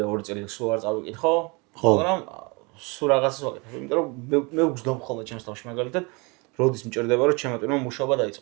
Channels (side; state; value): left; quieter; 28.8 dB